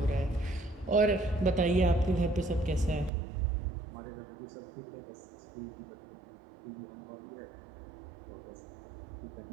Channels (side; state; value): left; drops out; at 3.1 s